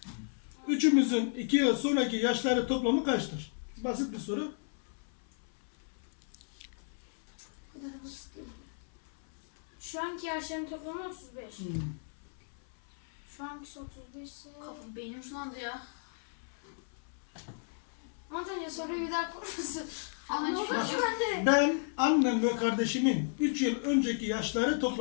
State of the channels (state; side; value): silent; right; 55 dB below the other